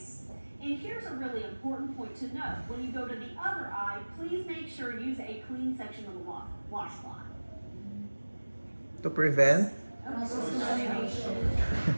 And here's a really important point to note. When you go to the other eye, please make sure you use a clean section of the washcloth. To prevent? Cross-contamination.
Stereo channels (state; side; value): inverted; both; correlation -1.00